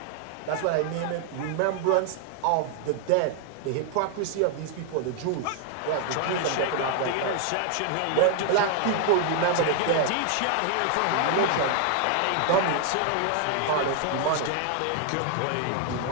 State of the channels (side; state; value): both; different; correlation 0.00